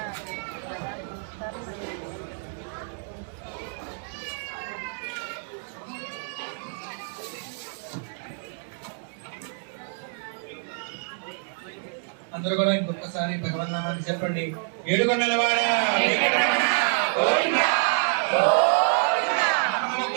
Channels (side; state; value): left; silent; 60 dB below the other